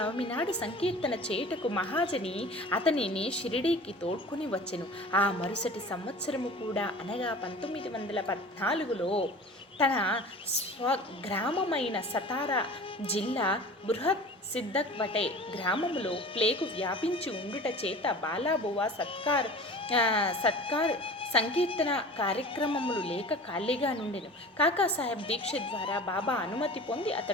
నాడు సంకీర్తన చేయుటకు మహాజని అతనిని షిరిడీకి తోడ్కొని వచ్చెను. ఆ మరుసటి సంవత్సరము కూడా అనగా 1914లో తన స్వగ్రామమైన సతారా జిల్లా బృహత్ సిద్దక్వటే గ్రామములో ప్లేగు వ్యాపించి ఉండుట చేత బాలాబువ సత్కార్ సంకీర్తన కార్యక్రమములు లేక ఖాళీగా నుండెను. కాకాసాహెబ్ దీక్షిత్ ద్వారా బాబా అనుమతి పొంది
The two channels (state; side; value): normal; both; correlation 0.39